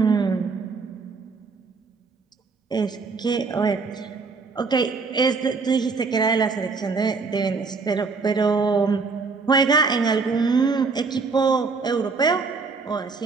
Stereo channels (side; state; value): left; quieter; 4.5 dB